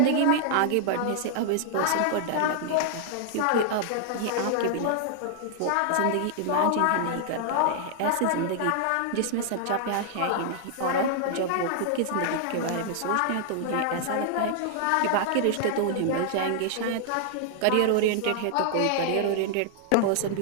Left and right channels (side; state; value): both; different; correlation 0.00